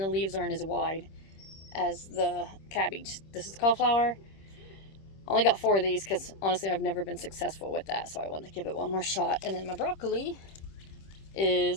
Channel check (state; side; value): late; right; 26 ms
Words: leaves aren't as wide as the cabbage. This is cauliflower. I only got 4 of these because honestly I've never been successful with that, so I wanted to give it one more shot. And then my broccoli